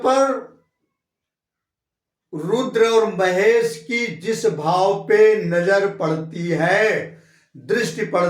रुद्र और महेश की जिस भाव पे नजर पड़ती है, दृष्टि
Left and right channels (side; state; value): both; identical; correlation 1.00